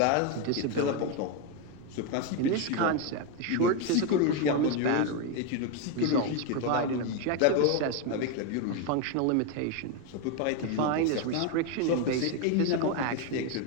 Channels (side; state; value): both; different; correlation 0.02